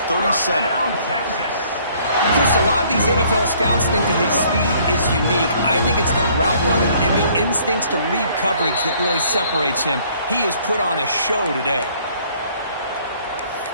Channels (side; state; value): both; inverted; correlation -0.60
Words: 37. Chris, a lot of these NFL scouts think that his speed is unique. I think it's the route running and the instincts to read coverage that really separates him. He has put on a show today.